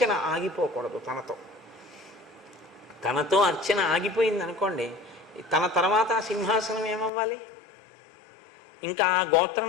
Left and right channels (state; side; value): drops out; right; at 7.1 s